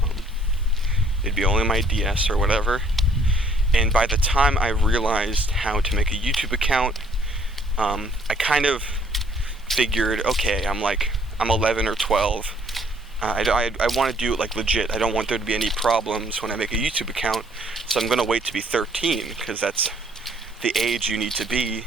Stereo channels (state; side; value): normal; both; correlation 0.63